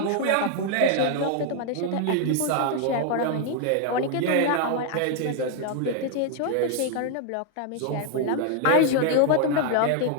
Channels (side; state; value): both; different; correlation 0.00